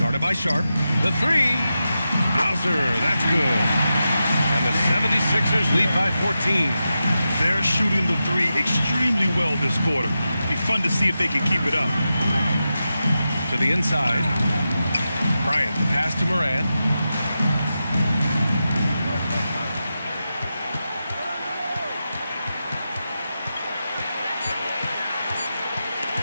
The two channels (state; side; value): inverted; both; correlation -0.90